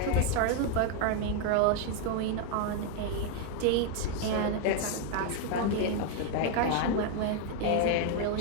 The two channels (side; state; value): both; different; correlation 0.01